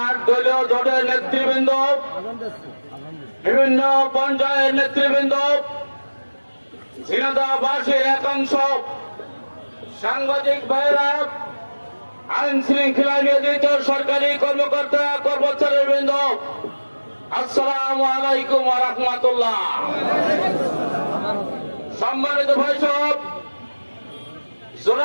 দলীয় জোটের নেতৃবৃন্দ, বিভিন্ন পর্যায়ের নেতৃবৃন্দ, ঝিনাইদহবাসীর একাংশ, সাংবাদিক ভাইরা, আইন শৃঙ্খলা নিয়োজিত সরকারি কর্মকর্তা কর্মচারীবৃন্দ, আসসালামু আলাইকুম ওয়া রাহমাতুল্লাহ। সম্মানিত ভাইসব,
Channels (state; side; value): inverted; both; correlation -1.00